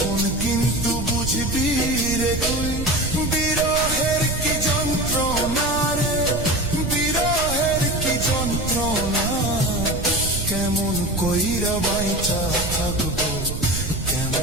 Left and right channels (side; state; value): right; noise; rumble, 5 dB below the sound